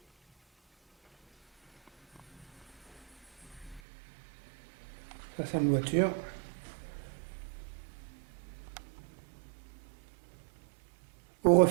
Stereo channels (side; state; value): left; drops out; at 3.8 s